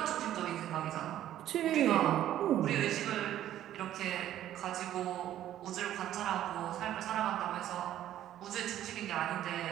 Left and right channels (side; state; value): left; quieter; 12.2 dB